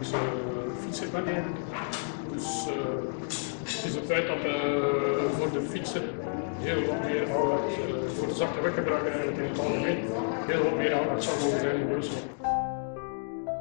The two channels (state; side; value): silent; right; digital silence